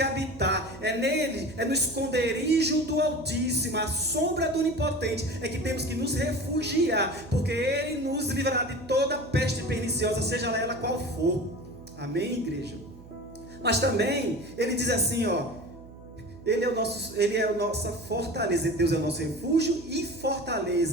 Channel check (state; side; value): noise; right; hum, 19 dB below the sound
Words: habitar. É nele, é no esconderijo do Altíssimo, a sombra do Onipotente, é que temos que nos refugiar, porque Ele nos livrará de toda peste perniciosa, seja ela qual for. Amém, igreja? Mas também, ele diz assim, Ele é a nossa fortaleza. Deus é o nosso refúgio e